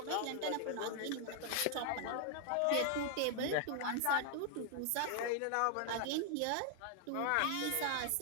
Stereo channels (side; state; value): both; different; correlation 0.00